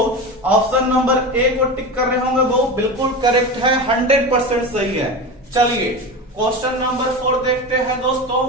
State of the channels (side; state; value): both; normal; correlation 0.25